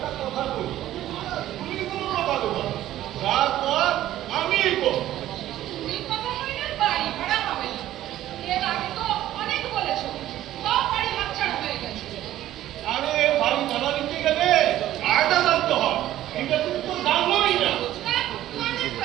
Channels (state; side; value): quieter; left; 13.5 dB